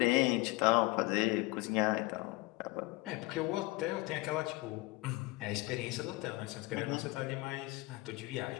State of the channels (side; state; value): right; quieter; 22.0 dB